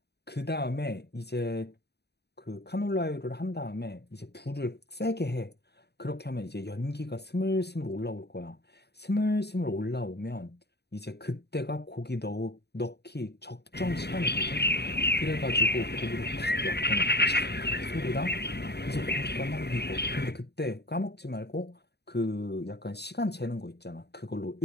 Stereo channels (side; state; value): right; late; 0.48 ms